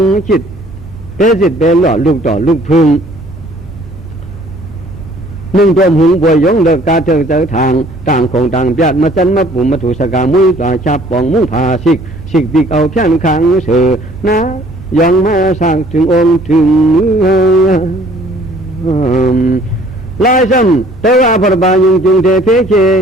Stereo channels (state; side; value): normal; both; correlation 0.56